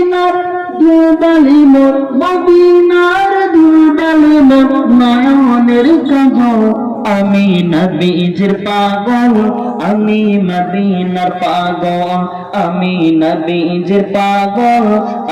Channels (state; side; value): identical; both; correlation 1.00